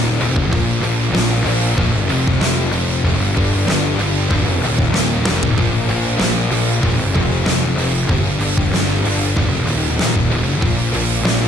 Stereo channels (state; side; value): normal; both; correlation 0.73